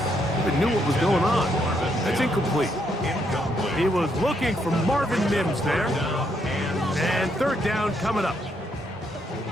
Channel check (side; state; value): both; normal; correlation 0.75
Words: even knew what was going on. That's incomplete. He was looking for Marvin Mims there. And third down coming up.